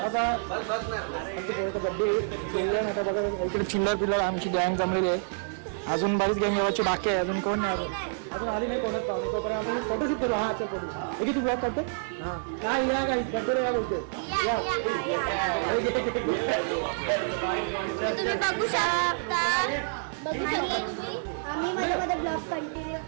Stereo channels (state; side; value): silent; left; 59 dB below the other